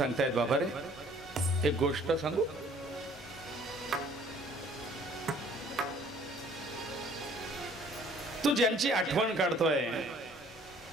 बाबा रे एक गोष्ट सांगू. तू ज्यांची आठवण काढतोय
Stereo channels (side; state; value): both; normal; correlation 0.56